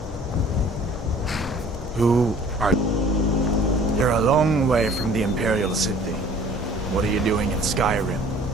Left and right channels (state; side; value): normal; both; correlation 0.51